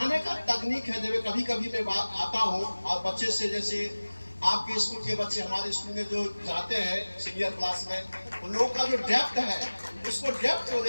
का तकनीक है, जब कभी कभी मैं आता हूँ और बच्चे से, जैसे आपके स्कूल के बच्चे हमारे स्कूल में जो जाते हैं सीनियर क्लास में, उन लोगों का जो डेप्थ है, उसको डेप्थ को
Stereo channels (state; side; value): inverted; both; correlation -1.00